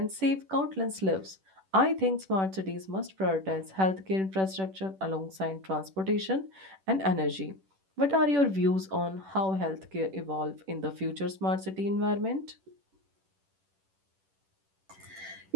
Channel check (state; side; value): late; left; 10 ms